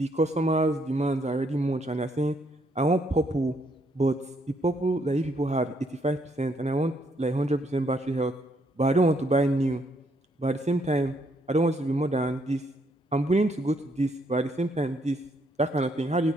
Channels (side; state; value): both; normal; correlation 0.72